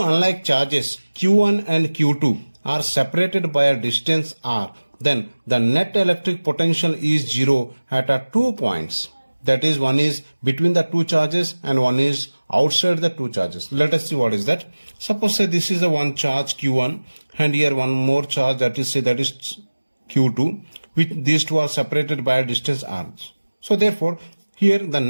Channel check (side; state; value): both; inverted; correlation -1.00